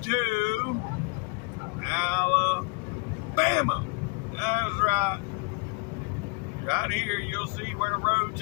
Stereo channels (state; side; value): quieter; right; 32.4 dB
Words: to Alabama. That's right. Right here, you'll see where the road